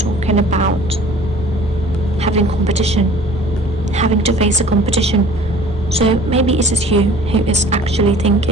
about having competition, having to face a competition. So maybe it is you who is actually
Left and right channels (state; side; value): normal; both; correlation 0.48